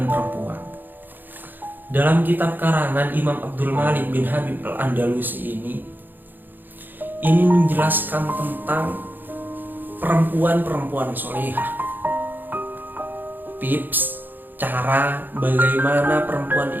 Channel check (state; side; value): late; left; 0.090 ms